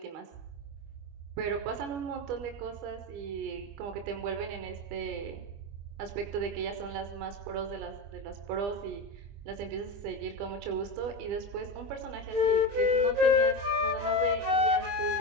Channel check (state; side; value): late; left; 25 ms